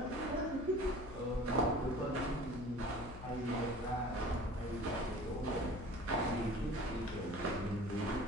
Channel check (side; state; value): left; noise; hum, 13 dB below the sound